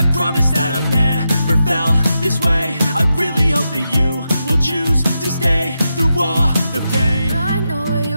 promise that I've never felt this way. I really hope that you will choose to stay through all the pain. I know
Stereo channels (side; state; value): both; inverted; correlation -0.87